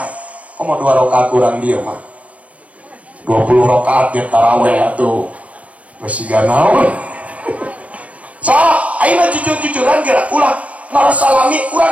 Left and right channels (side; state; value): left; late; 0.067 ms